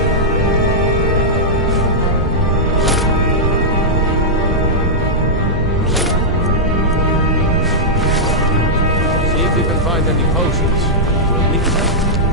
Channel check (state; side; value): normal; both; correlation -0.09